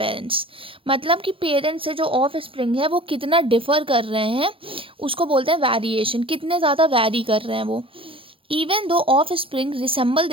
मतलब कि पेरेंट्स से जो ऑफ स्प्रिंग है वो कितना डिफर कर रहे हैं, उसको बोलते हैं वेरिएशन। कितने ज़्यादा वैरी कर रहे हैं वो। Even though offspring resemble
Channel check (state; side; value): late; left; 0.26 ms